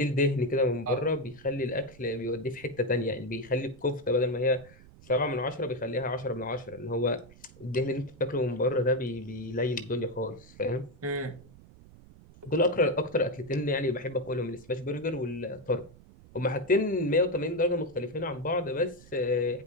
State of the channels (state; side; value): noise; right; rumble, 22 dB below the sound